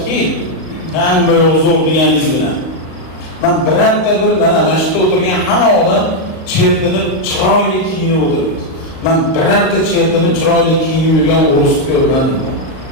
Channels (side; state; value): right; late; 38 ms